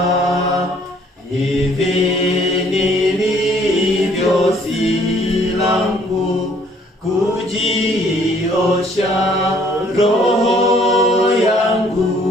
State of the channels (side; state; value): both; normal; correlation 0.61